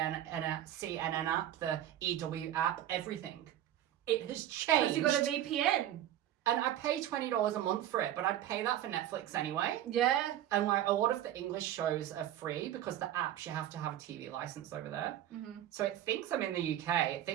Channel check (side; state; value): left; quieter; 12.0 dB